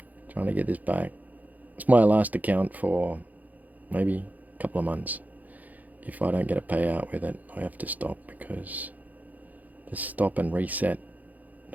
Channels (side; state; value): left; late; 0.080 ms